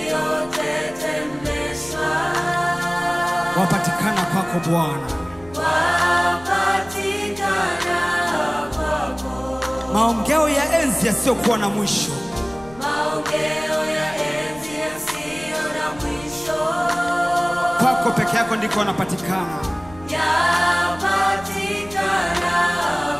Wapatikana kwako Bwana. Wapatikana kwako. Maongeo ya enzi yasiyokuwa na mwisho. Maongeo ya enzi yasiyo na mwisho. Kwako peke yako ndiko wanapatikana. Yapatikana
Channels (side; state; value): left; noise; rumble, 21 dB below the sound